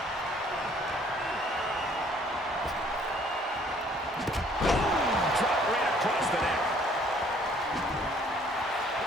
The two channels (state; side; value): normal; both; correlation 0.60